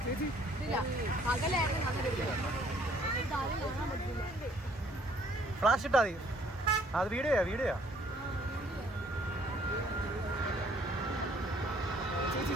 ഫ്ലാഷ് ഇട്ടാ മതി. അത് വീഡിയോയാ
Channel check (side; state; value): both; normal; correlation 0.61